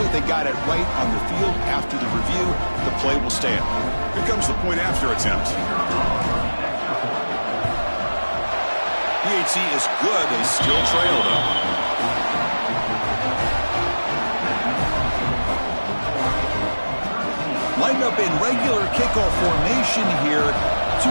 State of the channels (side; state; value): both; inverted; correlation -1.00